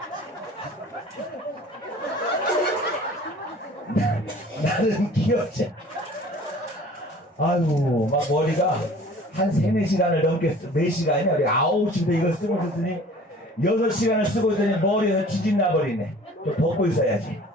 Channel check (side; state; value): both; normal; correlation 0.47